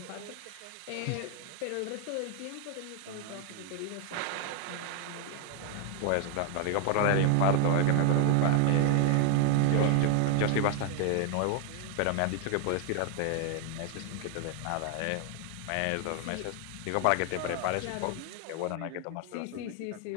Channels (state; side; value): different; both; correlation 0.00